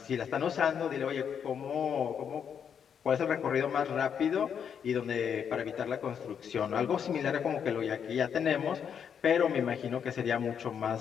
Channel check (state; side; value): quieter; right; 7.7 dB